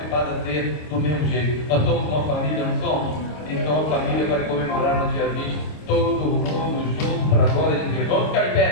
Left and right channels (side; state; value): right; late; 26 ms